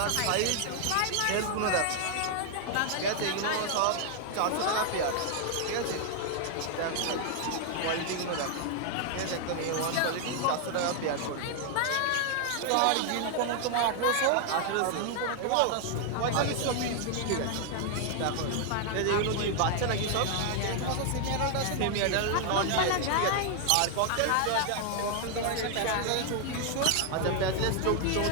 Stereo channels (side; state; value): both; different; correlation 0.00